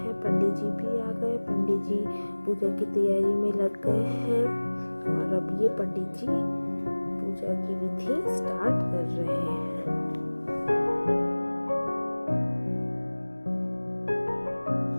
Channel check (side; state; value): both; inverted; correlation -1.00